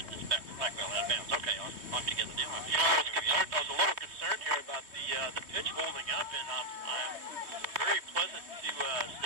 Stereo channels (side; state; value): left; late; 3.1 ms